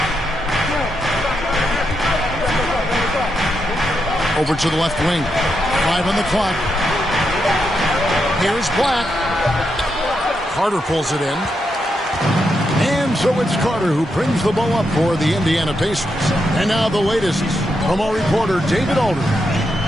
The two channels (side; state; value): both; normal; correlation 0.83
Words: Over to the left wing. 5 on the clock. Here's Black. Carter pulls it in. And so it's Carter who brings the ball up for the Indiana Pacers. And now the latest from our reporter, David Alder.